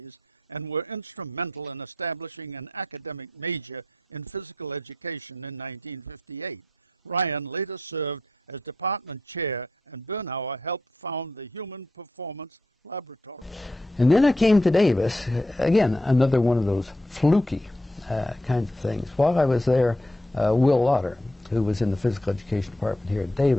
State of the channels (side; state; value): both; normal; correlation 0.80